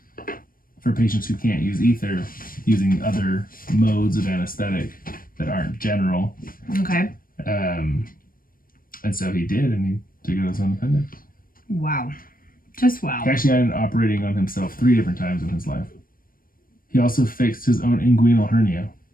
for patients who can't use ether using other modes of anesthetic that aren't general. Okay. And so he did, and he took out his own appendix. Wow. Just wow. He actually ended up operating on himself 3 different times in his life. He also fixed his own inguinal hernia.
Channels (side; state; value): right; late; 0.41 ms